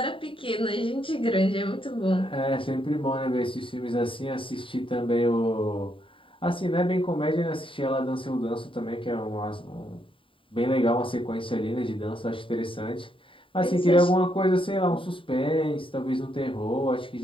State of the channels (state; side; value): late; right; 0.25 ms